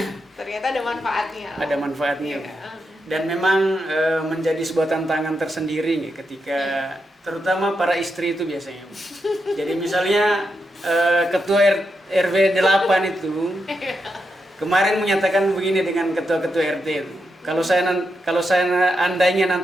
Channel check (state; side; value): normal; both; correlation 0.85